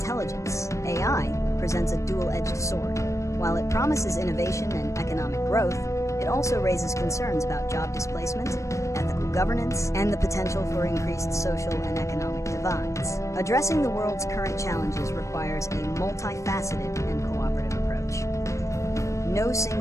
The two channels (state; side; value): late; right; 0.15 ms